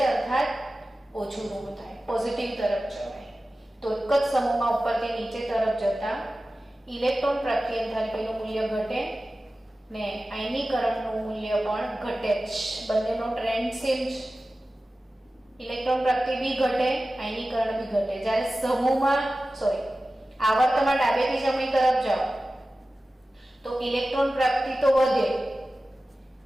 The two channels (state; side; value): normal; both; correlation 0.95